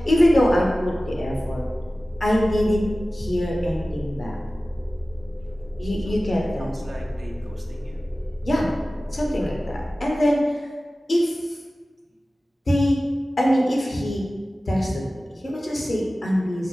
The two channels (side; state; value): both; normal; correlation 0.96